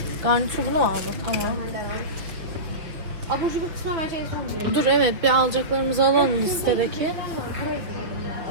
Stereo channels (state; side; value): late; left; 6.1 ms